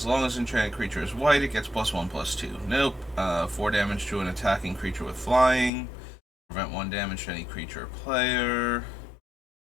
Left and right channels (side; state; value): right; drops out; at 5.7 s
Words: long as enchanted creature is white, it gets +1/+2. Nope. 4 damage to an attacking creature with flying. Prevent 1 damage to any creature or player.